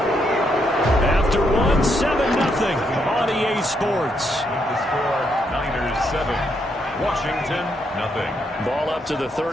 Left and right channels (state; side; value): normal; both; correlation 0.77